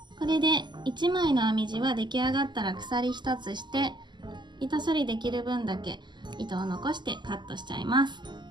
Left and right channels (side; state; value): left; late; 0.21 ms